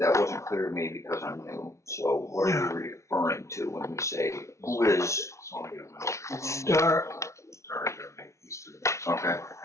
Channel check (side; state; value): right; late; 0.14 ms